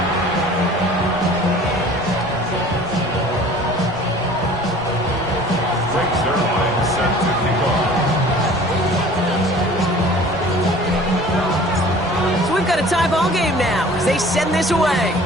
Tie ball game now as they send this away.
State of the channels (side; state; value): right; noise; rumble, 18 dB below the sound